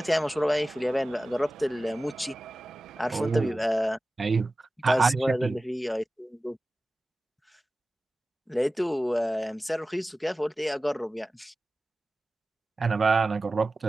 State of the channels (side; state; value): both; normal; correlation 0.96